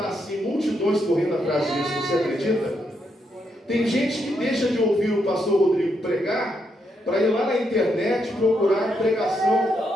assim, multidões correndo atrás disso, você acredita? Tem gente que deixa de ouvir o pastor Rodrigo pregar para ir lá na internet procurar pregação,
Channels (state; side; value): normal; both; correlation 0.79